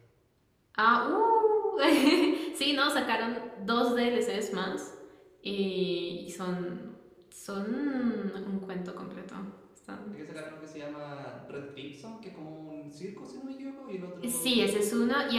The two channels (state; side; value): identical; both; correlation 1.00